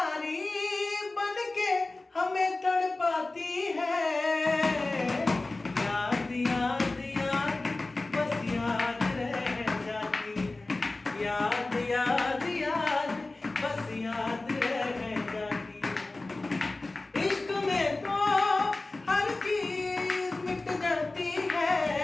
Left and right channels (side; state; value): right; quieter; 3.1 dB